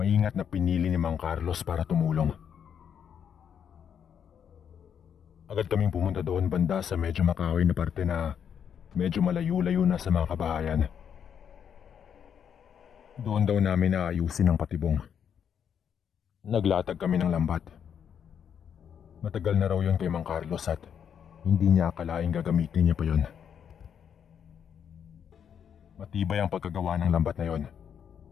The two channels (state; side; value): quieter; right; 8.1 dB